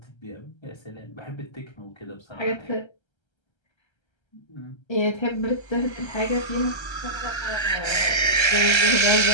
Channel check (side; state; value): right; late; 1.3 ms